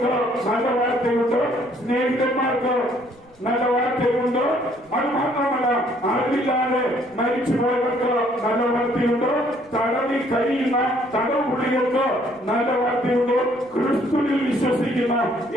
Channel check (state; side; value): noise; right; rumble, 29 dB below the sound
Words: നല്ല വാർത്തയുണ്ട്, സ്നേഹിതന്മാർക്ക് നല്ല വാർത്തയുണ്ട്. അത് മാത്രമല്ല, അറിവില്ലാതെ മരിച്ചുപോയവർക്ക് നല്ല വാർത്തയുണ്ട്, തടവിൽ കഴിയുന്ന തടവുപുള്ളികൾക്ക് നല്ല വാർത്തയുണ്ട്, ക്രിസ്തുവിൽ വിശ്വസിക്കുന്ന